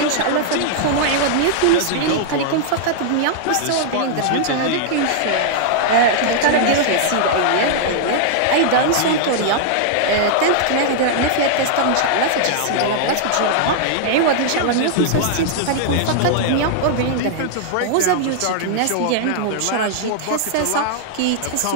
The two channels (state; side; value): different; both; correlation -0.01